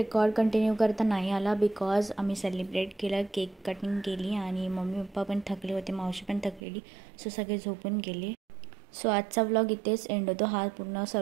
कंटिन्यू करता नाही आला बिकॉज आम्ही सेलिब्रेट केलं. केक कटिंग केली आणि मम्मी पप्पा पण थकले होते. मावशी पण थकलेली. सो सगळे झोपून गेले. सो आजचा व्लॉग इथेच एंड होतो. हा पूर्ण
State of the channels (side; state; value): left; drops out; at 6.6 s